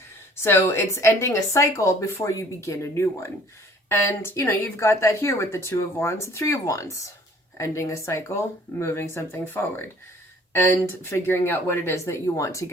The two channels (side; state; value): both; normal; correlation 0.54